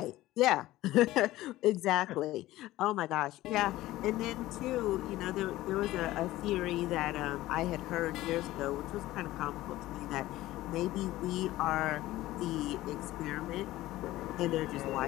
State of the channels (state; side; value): quieter; right; 16.4 dB